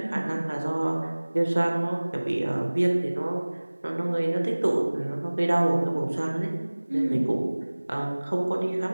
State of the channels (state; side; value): inverted; both; correlation -1.00